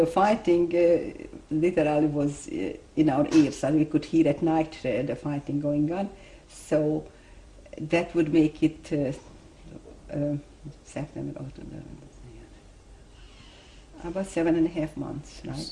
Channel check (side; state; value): both; identical; correlation 1.00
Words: fighting literally was in our ears, and we could hear at night the fighting going on. So that would make it September, October, about 7.5 months, right?